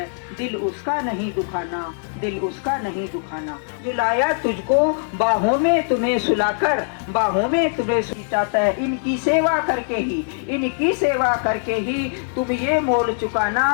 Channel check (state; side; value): silent; right; 60 dB below the other